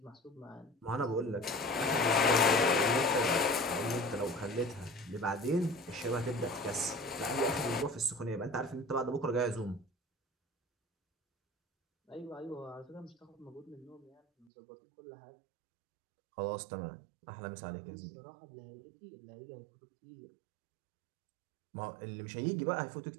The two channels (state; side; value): drops out; left; at 14.5 s